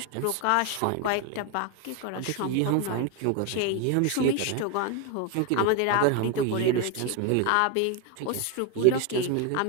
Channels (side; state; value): both; different; correlation 0.01